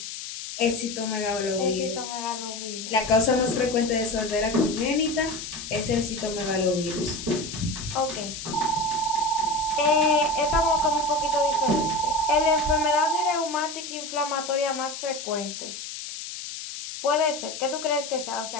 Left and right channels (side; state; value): left; noise; hiss, 9 dB below the sound